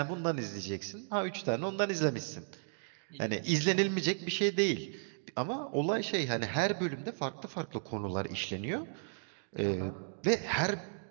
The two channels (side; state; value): left; silent; digital silence